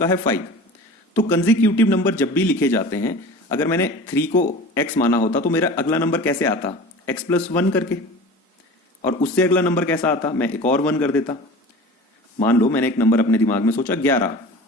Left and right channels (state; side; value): normal; both; correlation 0.38